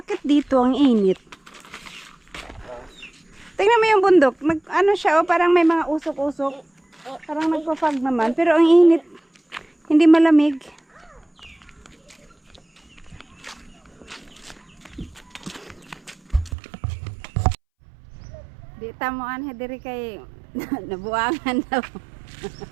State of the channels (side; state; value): left; drops out; at 16.6 s